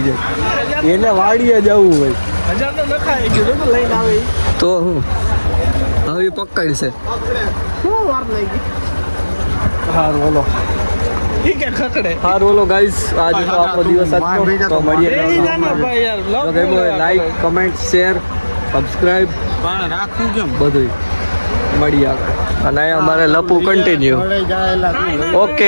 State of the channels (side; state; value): both; inverted; correlation -1.00